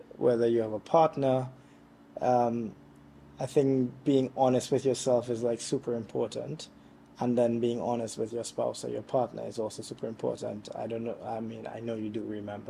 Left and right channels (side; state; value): both; identical; correlation 1.00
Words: whether you have a partner, um, I think being honest with yourself is like super important. And then being honest with your spouse or your partner is also super important. I don't know, I mean, I know you do